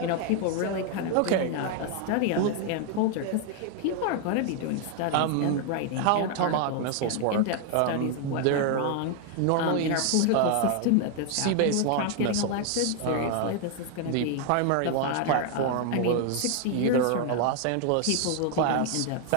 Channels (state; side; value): different; both; correlation 0.00